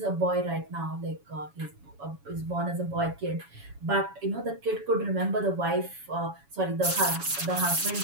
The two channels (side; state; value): left; late; 7.1 ms